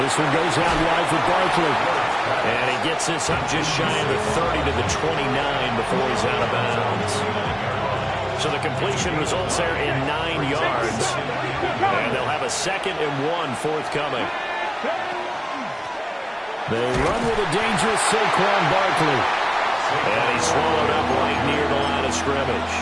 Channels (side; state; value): both; identical; correlation 1.00